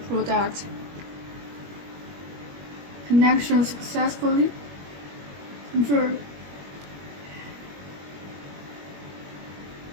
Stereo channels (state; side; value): late; left; 21 ms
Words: product. Connection successfully. Confirm.